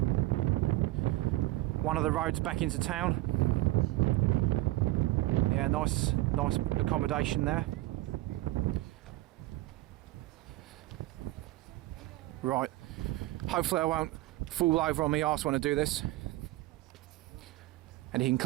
One of the roads back into town. Yeah, nice accommodation there. Right, hopefully I won't fall over on my arse when I do this. And you can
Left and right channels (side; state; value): left; quieter; 17.6 dB